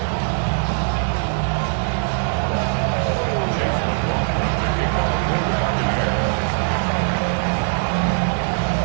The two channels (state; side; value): silent; left; 65 dB below the other